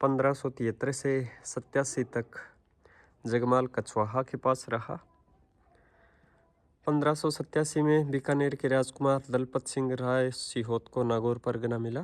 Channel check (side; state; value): both; identical; correlation 1.00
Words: 1573 से 87 तक जगमाल कछवाहा के पास रहा। 1587 में बीकानेर के राजकुमार दलपत सिंह राय सिहोत को नागौर परगना